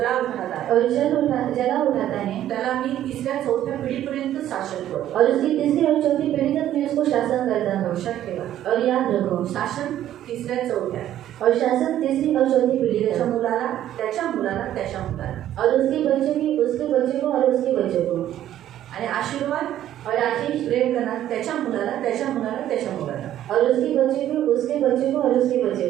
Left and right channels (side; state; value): left; quieter; 12.1 dB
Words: उठाता और जला उठाता है त्याला मी 3-4 पिढीपर्यंत शासन करतो. और उसकी तीसरी और चौथी पीढ़ी तक मैं उसको शासन करता हूँ. लक्षात ठेवा, और याद रखो, शासन 3-4 और शासन तीसरी और चौथी पीढ़ी त्याच्या तक. मुलाला, त्याच्या मुलाला, त्याच्या मुलाला. और उसके बच्चे की उसके बच्चे को और उसके बच्चे को. आणि आशीर्वाद और आशीष प्रेम करणार त्याच्या मुलाला, त्याच्या मुलाला, त्याच्या मुलाला. और उसके बच्चे को उसके बच्चे को और उसके